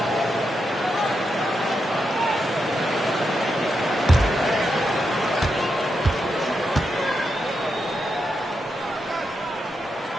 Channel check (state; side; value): normal; both; correlation 0.85